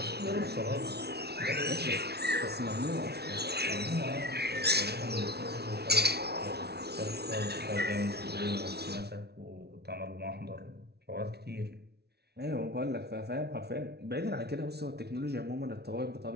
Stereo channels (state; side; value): late; left; 0.48 ms